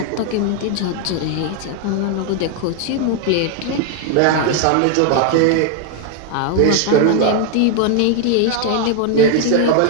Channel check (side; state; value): both; different; correlation 0.00